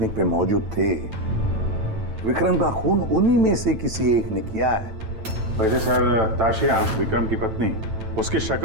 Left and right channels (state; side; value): late; left; 9.1 ms